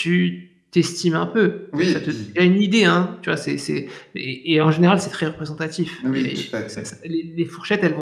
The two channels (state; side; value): identical; both; correlation 1.00